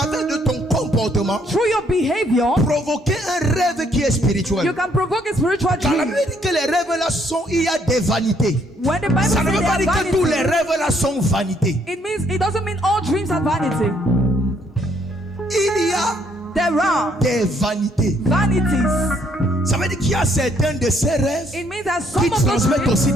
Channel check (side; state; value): both; normal; correlation 0.68